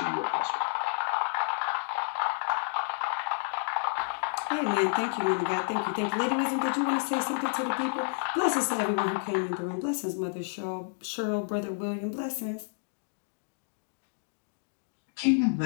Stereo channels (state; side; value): silent; right; digital silence